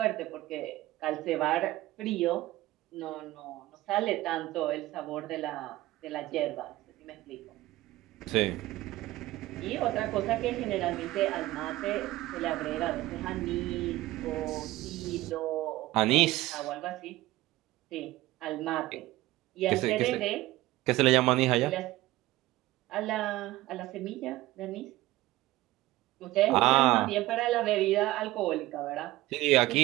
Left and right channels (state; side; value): quieter; left; 17.4 dB